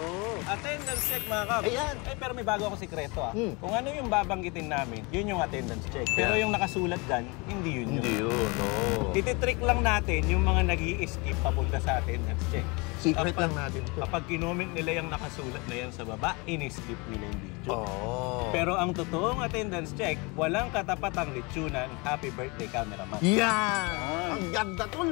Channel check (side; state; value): right; quieter; 28.0 dB